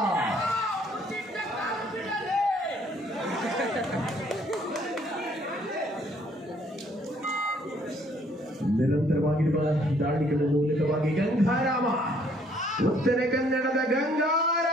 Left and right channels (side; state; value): both; normal; correlation 0.63